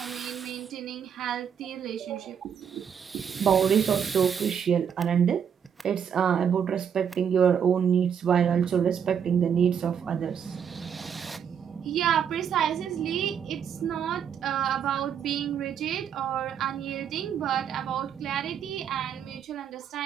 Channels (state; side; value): quieter; left; 7.9 dB